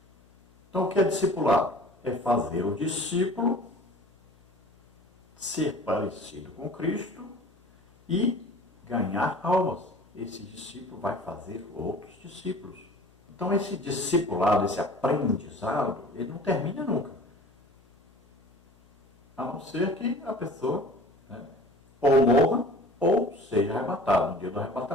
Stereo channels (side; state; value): left; noise; hum, 30 dB below the sound